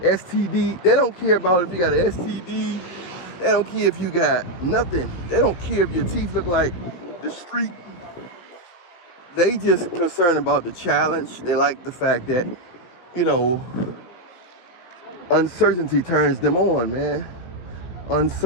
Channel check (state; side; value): late; right; 17 ms